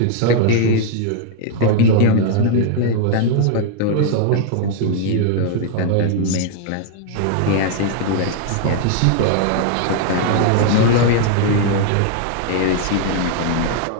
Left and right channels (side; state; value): both; different; correlation 0.00